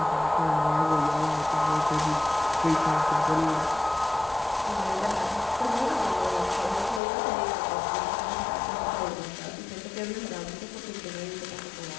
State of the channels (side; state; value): right; drops out; at 7.0 s